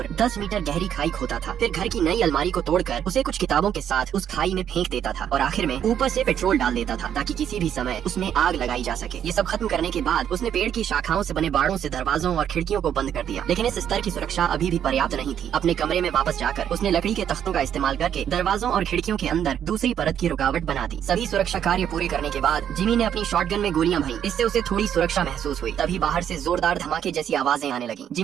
10 मीटर गहरी खाई खोदा था। फिर घर की नई अलमारी को तोड़कर उसे कुछ किताबों के साथ उस खाई में फेंक देता था और आखिर में ऊपर से पेट्रोल डाल देता था ताकि किसी भी समय उसमें आग लगाई जा सके। ये सब खत्म करने के बाद उसने पेड़ की शाखाओं से बने बाड़ों से दरवाजों और खिड़कियों को बंद कर दिया, लेकिन इस स्तर की सुरक्षा अभी भी पर्याप्त नहीं थी। अपने कमरे में वापस जाकर उसने लकड़ी के तख्तों का इस्तेमाल करके दरवाजों और खिड़कियों के अंदर दूसरी परत की रुकावट बना दी। सभी सुरक्षा कार्य पूरे करने के बाद जिमी ने अपनी शॉटगन में गोलियां भरी। इससे उसे थोड़ी सुरक्षा महसूस हुई। तभी बाहर से जोरदार धमाके जैसी आवाजें आने लगी।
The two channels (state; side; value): quieter; left; 9.4 dB